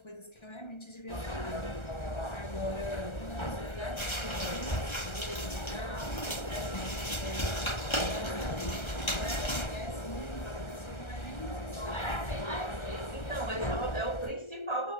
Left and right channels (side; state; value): right; late; 1.3 ms